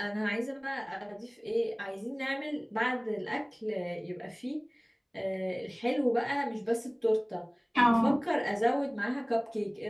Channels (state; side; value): identical; both; correlation 1.00